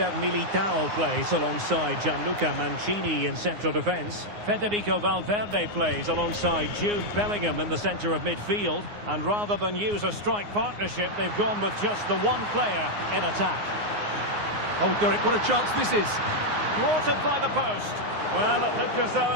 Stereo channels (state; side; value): late; left; 9.6 ms